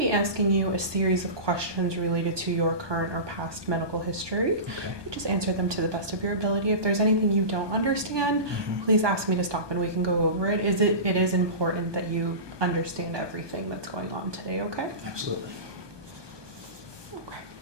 be asking you a series of questions related to your current or past medical history. Okay. Just answer them to the best of your ability. If there's anything you don't understand, please ask me to stop and we can go over it. It is important that you understand everything that's going on today, okay? Absolutely.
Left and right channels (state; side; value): late; left; 1.2 ms